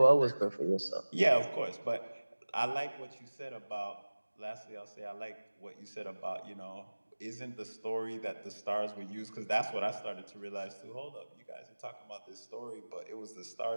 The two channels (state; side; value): inverted; both; correlation -1.00